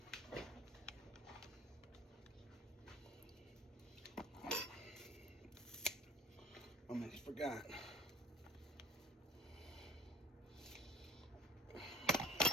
I almost forgot.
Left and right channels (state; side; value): normal; both; correlation 0.47